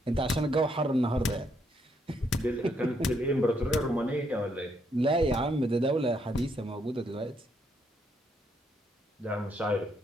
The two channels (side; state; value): both; normal; correlation 0.74